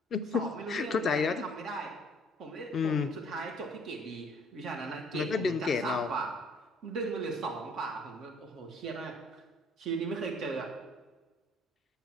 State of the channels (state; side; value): normal; both; correlation 0.59